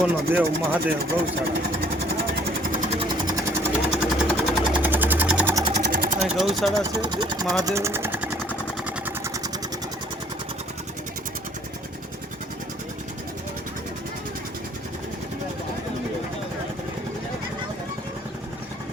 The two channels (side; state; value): both; normal; correlation 0.57